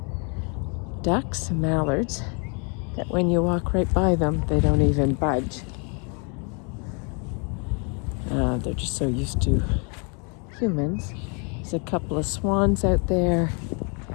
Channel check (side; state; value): right; quieter; 36.1 dB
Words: ducks, some mallards, that when you walk right by them, they don't even budge. They're just so used to humans. There's a couple of swans out there